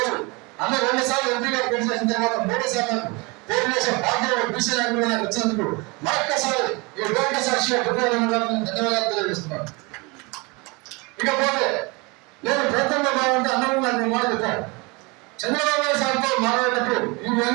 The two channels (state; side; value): quieter; left; 27.5 dB